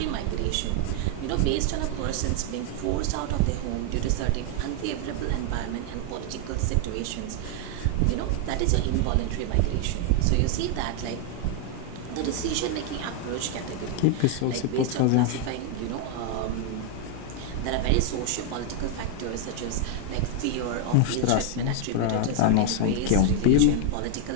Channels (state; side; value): different; both; correlation 0.00